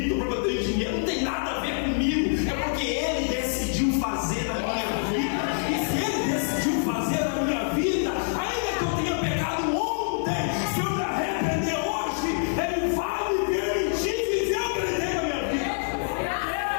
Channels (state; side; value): silent; right; digital silence